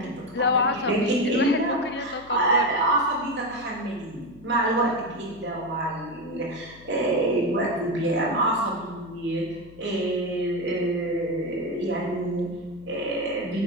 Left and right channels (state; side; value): noise; left; hum, 23 dB below the sound